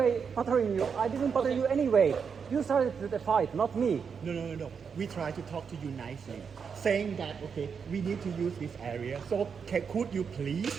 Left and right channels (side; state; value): left; quieter; 6.3 dB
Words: bothering you. I didn't bother you anyway. You started the fight, not me. No. We try to talk to you nicely, saying that okay, we need to use this area. So could you please